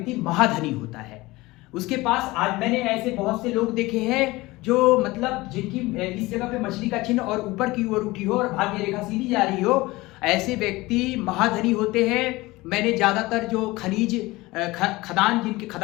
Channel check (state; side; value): quieter; right; 20.6 dB